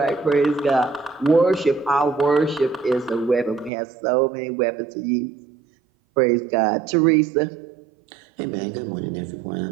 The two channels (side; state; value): left; drops out; at 3.7 s